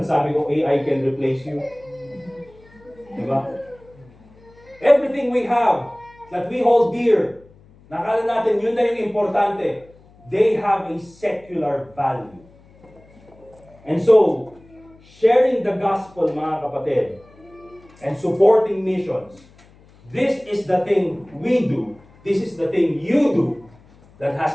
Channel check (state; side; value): noise; left; hum, 27 dB below the sound